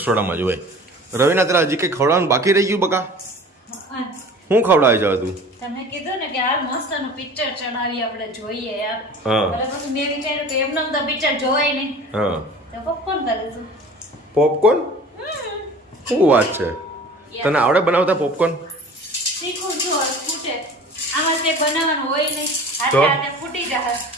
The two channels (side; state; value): both; normal; correlation 0.42